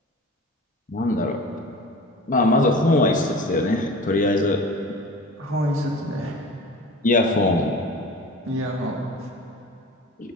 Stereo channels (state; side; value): normal; both; correlation 0.38